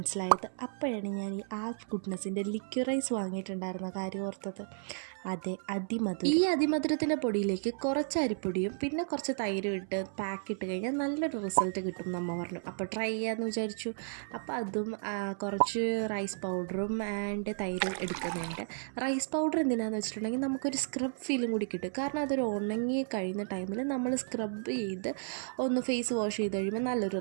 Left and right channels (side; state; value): left; silent; 56 dB below the other